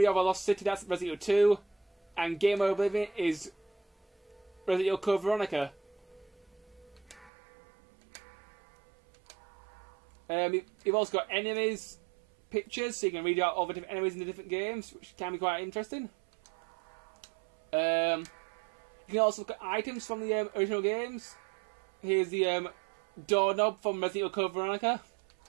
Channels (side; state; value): left; drops out; at 7.3 s